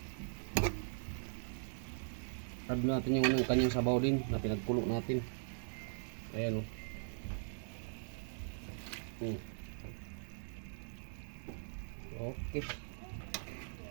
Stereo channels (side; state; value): left; silent; digital silence